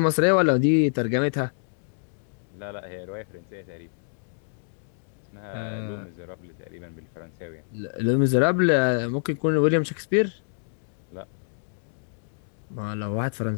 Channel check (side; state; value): right; silent; digital silence